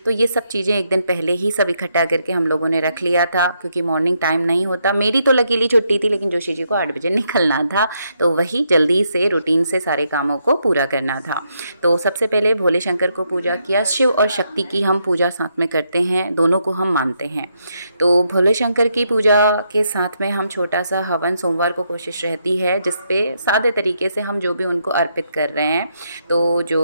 तो ये सब चीज़ें एक दिन पहले ही सब इकट्ठा करके हम लोगों ने रख लिया था, क्योंकि मॉर्निंग टाइम नहीं होता। मेरी तो लकीली छुट्टी थी, लेकिन जोशी जी को 8 बजे निकलना था, तो वही जल्दी से रूटीन से सारे कामों को पूरा करना था। तो सबसे पहले भोले शंकर को पूजा किया। शिव और शक्ति की हम पूजा साथ में करते हैं, दोनों को हम मानते हैं। तो भोले शंकर की पूजा के साथ में हम छोटा सा हवन सोमवार को कोशिश रहती है, जिसपे सादे तरीके से हम जो भी उनको अर्पित कर रहे हैं, तो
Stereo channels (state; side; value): inverted; both; correlation -0.78